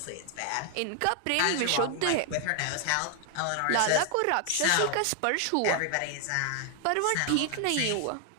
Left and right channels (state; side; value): different; both; correlation 0.00